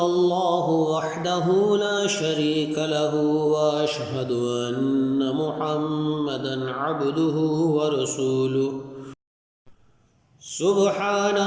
الله وحده لا شريك له وأشهد أن محمدا عبده ورسوله. سبحان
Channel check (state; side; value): identical; both; correlation 1.00